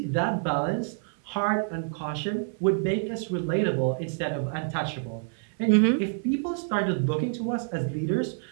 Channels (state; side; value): silent; left; 60 dB below the other